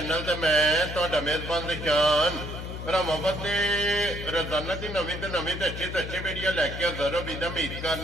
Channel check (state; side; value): noise; left; hum, 8 dB below the sound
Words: ते मैं तुहाडा मेजबान निशान भरावां ते रोजाना की नवीं तो अच्छी वीडियो लैके हाज़र हो। उम्मीद